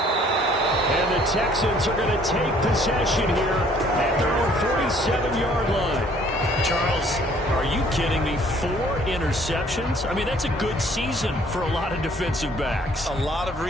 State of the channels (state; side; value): normal; both; correlation 0.59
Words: And the Texans are going to take possession here at their own 47-yard line. Charles, are you kidding me? 4 interceptions? I mean, that's a good season for a lot of defensive backs. A lot of